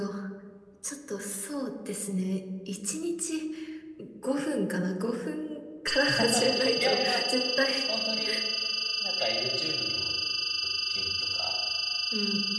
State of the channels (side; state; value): both; identical; correlation 1.00